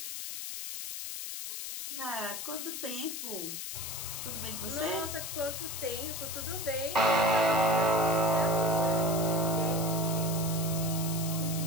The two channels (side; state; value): left; noise; hiss, 6 dB below the sound